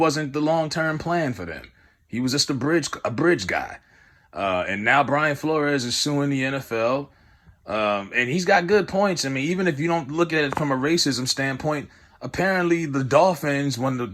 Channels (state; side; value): identical; both; correlation 1.00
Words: the long-term plan for them. He was just a bridge guy. And now Brian Flores is suing the NFL. And he's got good points. I mean, even if you don't look at it from a racism standpoint, apparently the Dolphins,